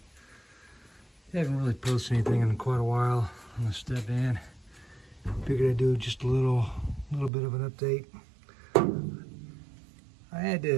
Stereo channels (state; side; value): drops out; left; at 7.3 s